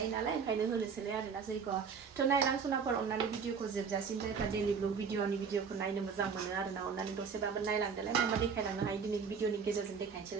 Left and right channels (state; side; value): quieter; left; 6.0 dB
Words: नालाय ओंखायनो होनोसैलाय आरोना जैग' थ' नायलां सनाफोर अननानै भिडिअ'खौ जोबजासिम जायफ्रा डेलि ब्लग भिडिअ'खौ नायनो मोजां मोनो आरोना अननानै दसेबाबो नायलांदोलाय मा देखायलांनो हायो दिनै भिडिअ'नि गेजेरजों